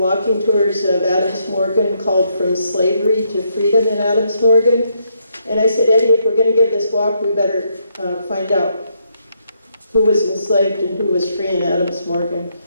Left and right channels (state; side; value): inverted; both; correlation -0.75